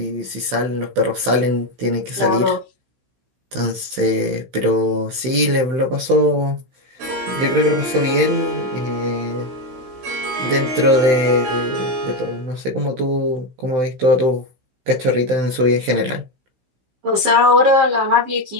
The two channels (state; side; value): late; left; 16 ms